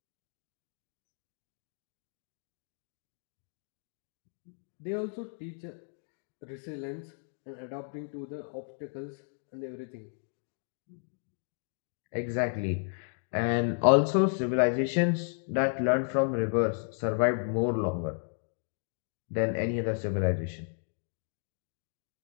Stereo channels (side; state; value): right; silent; 56 dB below the other